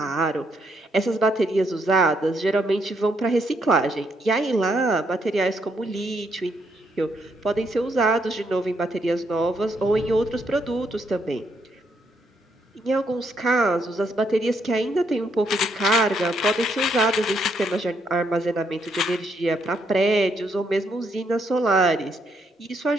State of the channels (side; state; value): both; normal; correlation 0.75